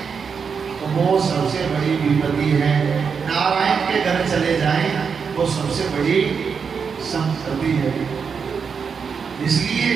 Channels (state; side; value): quieter; left; 6.1 dB